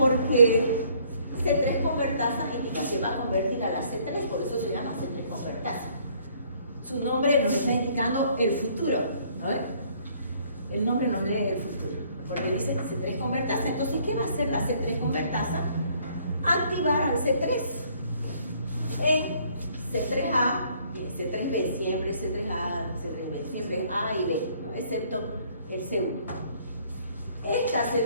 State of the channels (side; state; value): both; inverted; correlation -0.62